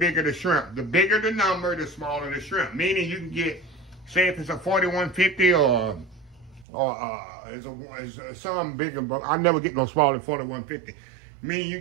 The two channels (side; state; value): left; drops out; at 6.7 s